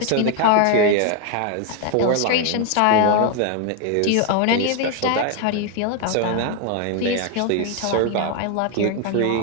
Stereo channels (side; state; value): both; different; correlation 0.01